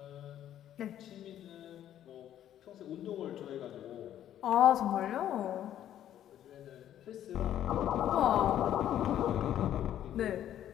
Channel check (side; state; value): right; quieter; 11.3 dB